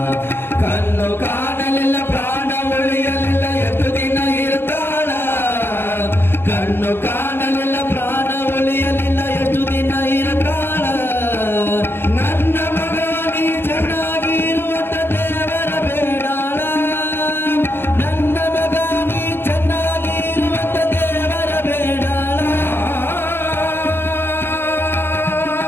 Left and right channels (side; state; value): right; late; 0.11 ms